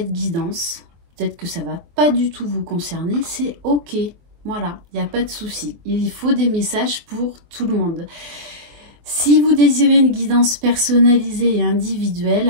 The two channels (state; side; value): late; left; 24 ms